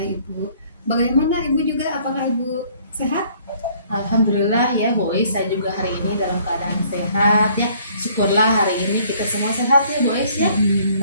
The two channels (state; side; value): inverted; both; correlation -0.60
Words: Ibu. Bagaimana Ibu juga? Apakah Ibu sehat? Alhamdulillah ya boys, saya juga hari ini dalam keadaan sehat ya. Syukurlah hari ini kita semua sehat ya boys ya.